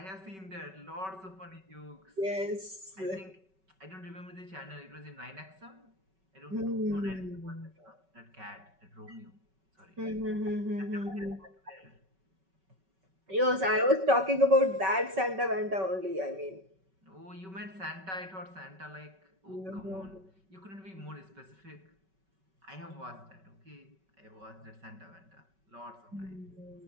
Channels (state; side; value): late; left; 5.3 ms